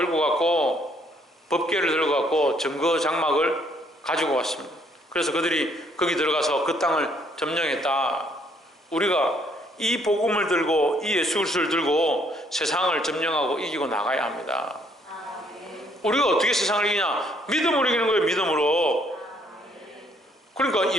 갔고 법궤를 들고 갔고 증거 장막을 가지고 왔습니다. 그래서 그들이 거기 들어가서 그 땅을 점령했다. 우리가 이 복음을 들고 이 예수 그리스도를 들고 세상을 점령하고 이기고 나가야 합니다. 우리가 어떻게 세상을 이기냐? 믿음으로 이기는 거예요. 믿음으로. 그러니까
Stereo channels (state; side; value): normal; both; correlation 0.67